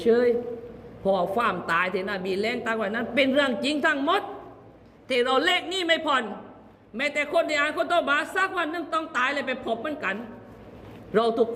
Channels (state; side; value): identical; both; correlation 1.00